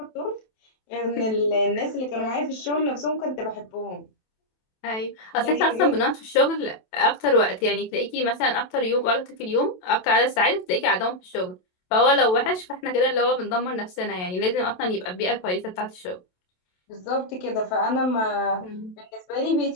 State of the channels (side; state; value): right; late; 27 ms